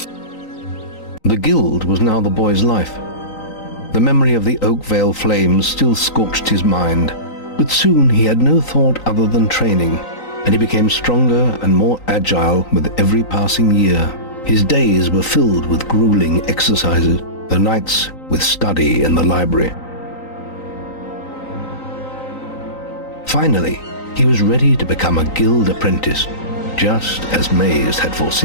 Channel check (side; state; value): right; late; 3.9 ms